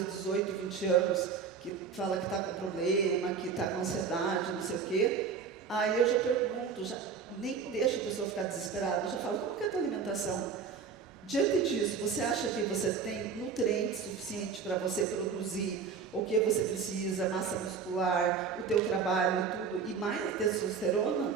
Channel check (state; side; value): quieter; left; 5.9 dB